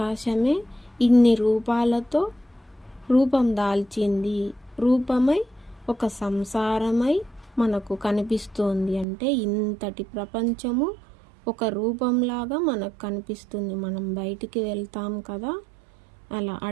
ఇన్ని రూపాలతో రూపం దాల్చింది, రూపమై ఒక సంసారమై మనకు కనిపిస్తోంది. అంటే ఇంతటి ప్రపంచము ఒక రూపంలాగా మనకు కనిపిస్తుంది. మనం బయటికి వెళ్తాం కదా, అలా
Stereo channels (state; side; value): drops out; left; at 9.1 s